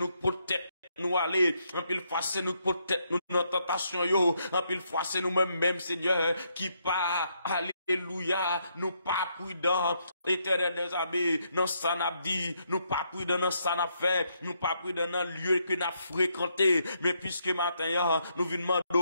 protéger nous aller, en pile fois c'est nous protéger nous dans tentation yo, en pile fois c'est nous même Seigneur, qui pas alléluia, nous pas prudents, Éternel des armées, non ça n'a dit, nous pas prudents dans ça n'a fait, nous pas prudents dans le lieu que n'a fréquenté, mais puisque matin, nous venons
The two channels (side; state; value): both; inverted; correlation -0.76